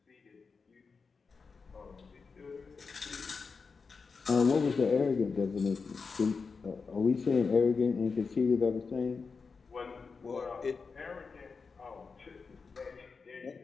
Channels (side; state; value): right; quieter; 4.9 dB